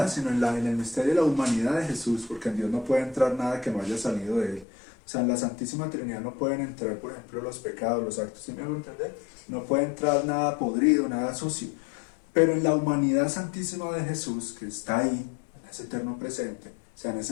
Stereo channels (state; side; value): drops out; right; at 4.7 s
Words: sino en el misterio de la humanidad de Jesús, porque en Dios no puede entrar nada que no haya salido de Él. O sea, en la Santísima Trinidad no pueden entrar, por ejemplo, los pecados, los actos, ¿sí me hago entender? No puede entrar nada podrido, nada sucio. Pero en la humanidad santísima de Jesús, que está ahí, en ese eterno presente, o sea, en